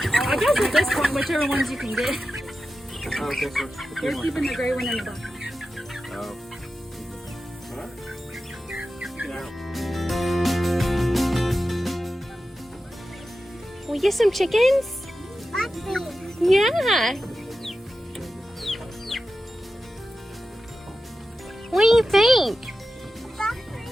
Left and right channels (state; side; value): normal; both; correlation 0.92